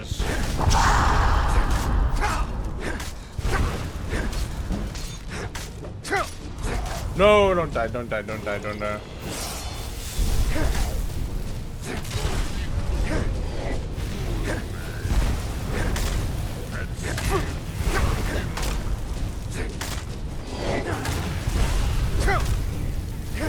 No, don't die, don't die, don't die, don't die.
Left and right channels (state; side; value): identical; both; correlation 1.00